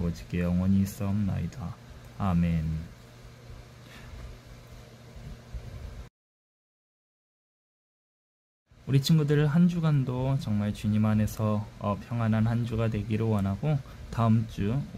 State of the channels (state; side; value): identical; both; correlation 1.00